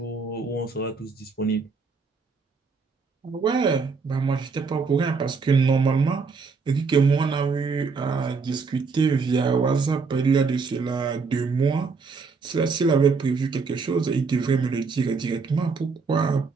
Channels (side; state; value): left; quieter; 4.8 dB